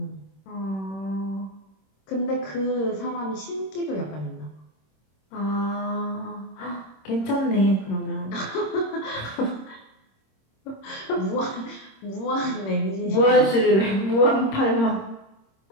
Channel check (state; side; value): late; right; 26 ms